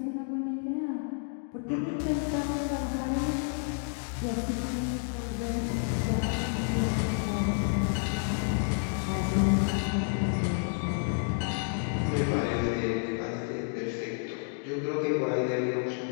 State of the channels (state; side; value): silent; right; 58 dB below the other